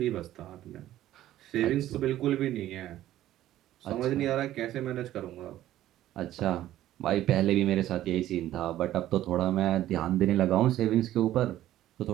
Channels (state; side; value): quieter; left; 13.6 dB